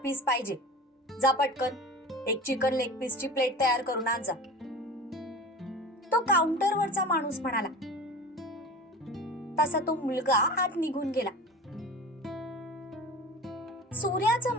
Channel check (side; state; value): both; normal; correlation 0.36